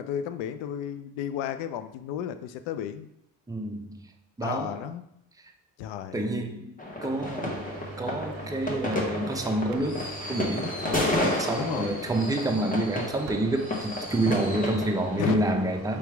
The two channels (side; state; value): both; normal; correlation 0.49